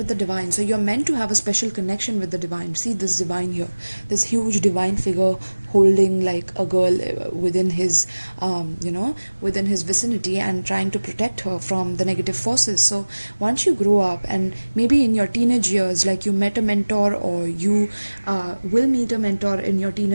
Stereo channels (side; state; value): both; inverted; correlation -1.00